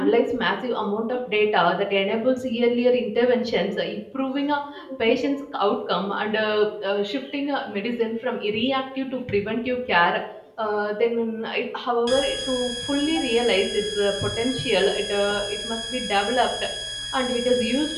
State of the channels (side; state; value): both; identical; correlation 1.00